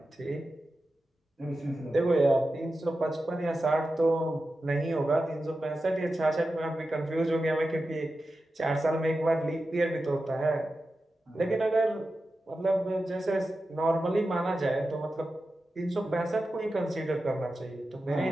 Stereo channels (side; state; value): both; normal; correlation 0.92